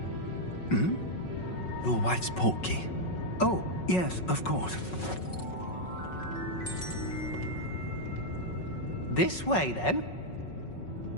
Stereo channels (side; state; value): right; late; 5.4 ms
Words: Your wife's portkey. Oh, yes, of course. This way, then.